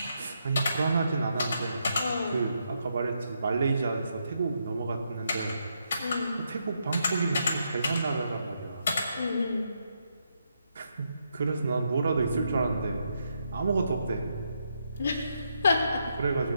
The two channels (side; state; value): both; inverted; correlation -0.79